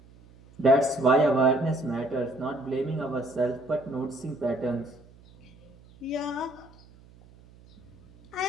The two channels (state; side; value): noise; right; hum, 25 dB below the sound